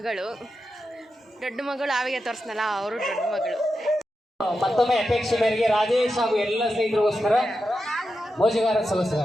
ದೊಡ್ಡ ಮಗಳು ಆವಿಗೆ ತೋರಿಸ್ನಲ್ಲ, ಅವರು ದೊಡ್ಡ ಮಗಳು. ಮತ್ತೊಮ್ಮೆ ಅಪೇಕ್ಷೆ ಮೇರೆಗೆ ರಾಜೇಶ್ ಹಾಗೂ ಎಲ್ಲ ಸ್ನೇಹಿತರಿಗೋಸ್ಕರ ಮೋಜುಗಾರ ಸದಸ್ಯರ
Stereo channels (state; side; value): normal; both; correlation 0.89